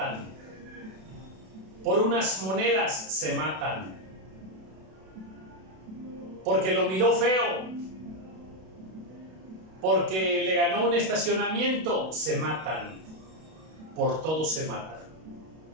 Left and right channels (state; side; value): late; left; 32 ms